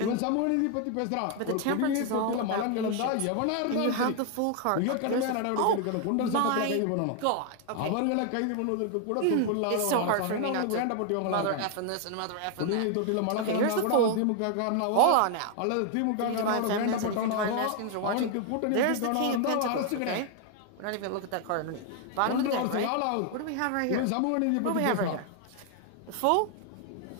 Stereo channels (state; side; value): different; both; correlation 0.00